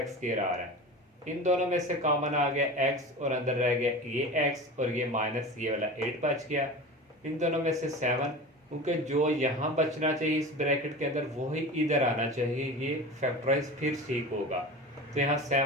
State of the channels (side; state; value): both; normal; correlation 0.32